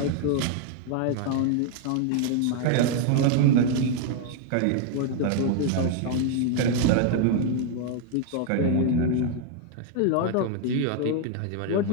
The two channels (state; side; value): different; both; correlation 0.01